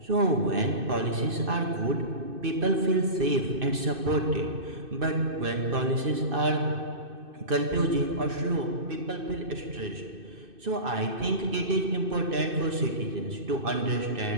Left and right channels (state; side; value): late; left; 2.6 ms